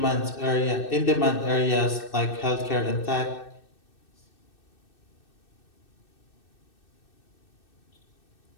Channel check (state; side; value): late; right; 2.6 ms